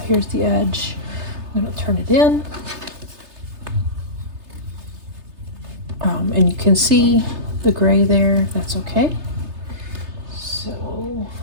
here's the edge. I'm going to turn it in. And you can see the gray there. That's okay. So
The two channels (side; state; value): left; late; 3.3 ms